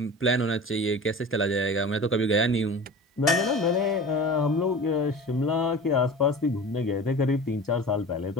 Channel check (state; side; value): normal; both; correlation 0.36